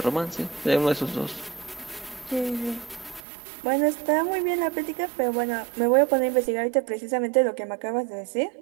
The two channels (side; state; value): left; drops out; at 3.2 s